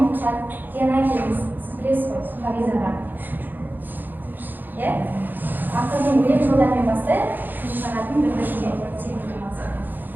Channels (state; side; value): late; left; 0.088 ms